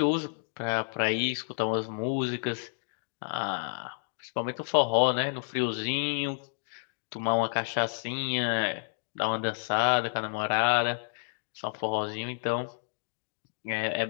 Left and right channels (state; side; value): silent; right; digital silence